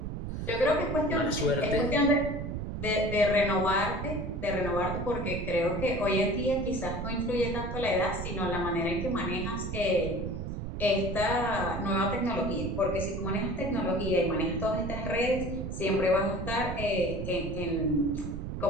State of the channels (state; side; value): noise; right; rumble, 5 dB below the sound